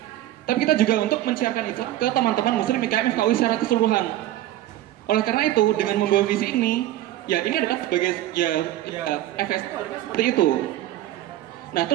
tapi kita juga untuk mensiarkan Islam ke teman-teman Muslim IKM FKUI secara keseluruhan. Oleh karena itu, dengan membawa visi ini, ya ini adalah sebagai FSI seperti itu. Nah,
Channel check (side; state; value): left; quieter; 14.0 dB